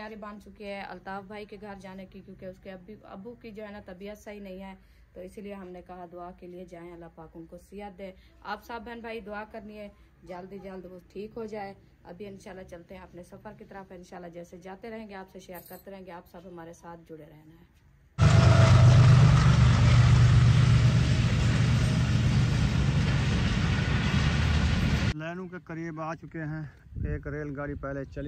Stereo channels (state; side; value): identical; both; correlation 1.00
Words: बन चुकी है अल्ताफ भाई के घर जाने की, क्योंकि उसके अब्बू की जो है ना तबीयत सही नहीं है, तो इसीलिए हमने कहा दुआ के लिए जाएं, अल्लाह पाक उनको सेहत दे। आप सब बहन भाई दुआ करनी है जल्दी जल्द वो ठीक हो जाए। अभी इंशाल्लाह चलते हैं अपने सफर की तरफ। इंशाल्लाह जैसे जाते रहेंगे आपसे शेयर करते रहेंगे, आप सब हमारे साथ जुड़े रहना है। लैनू के करीब आ चुके हैं। एक रेलगाड़ी पहले